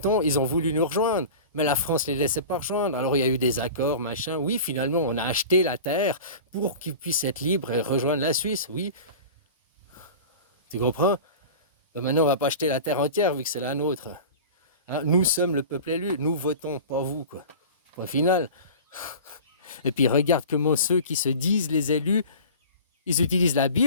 ils ont voulu nous rejoindre, mais la France ne les laissait pas rejoindre. Alors il y a eu des accords, machin. Oui, finalement, on a acheté la terre pour qu'ils puissent être libres et rejoindre la Suisse. Oui, tu comprends? Ben maintenant, on ne va pas acheter la terre entière vu que c'est la nôtre. Hein, nous sommes le peuple élu, nous votons, pas vous, quoi. Au final. Et puis regarde comment ceux qui se disent les élus, ils utilisent la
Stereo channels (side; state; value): both; inverted; correlation -0.36